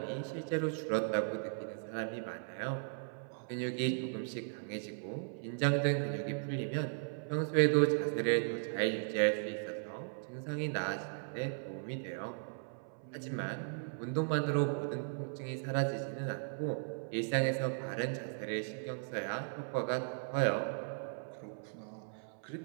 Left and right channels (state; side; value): silent; left; 53 dB below the other